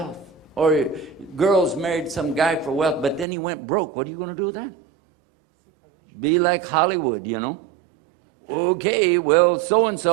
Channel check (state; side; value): drops out; left; at 3.2 s